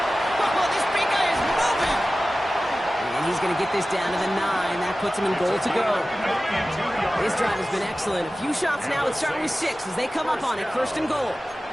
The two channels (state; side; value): normal; both; correlation 0.96